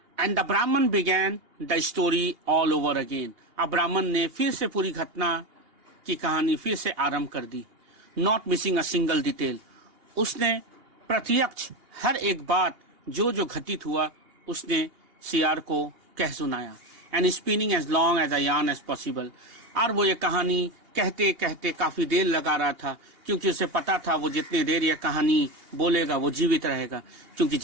And the Brahman began the story all over again. अब ब्राह्मण ने फिर से पूरी घटना की कहानी फिर से आरंभ कर दी। Not missing a single detail. उसने प्रत्यक्ष हर एक बात जो जो घटित हुआ उसने सियार को कह सुनाया। And spinning as long as a yarn as possible. और वो ये कहानी कहते कहते काफी देर लगा रहा था, क्योंकि उसे पता था वो जितने देर ये कहानी बोलेगा वो जीवित रहेगा, क्योंकि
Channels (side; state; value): left; late; 2.8 ms